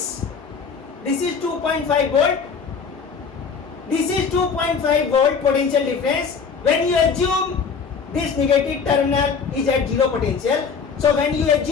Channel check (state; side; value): quieter; right; 5.7 dB